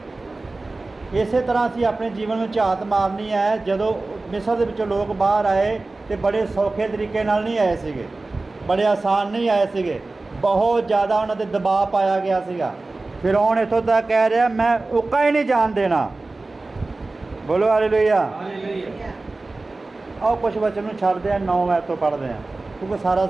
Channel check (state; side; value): quieter; left; 3.3 dB